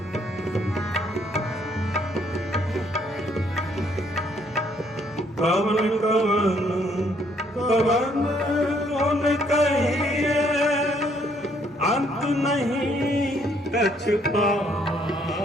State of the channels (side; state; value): both; normal; correlation 0.67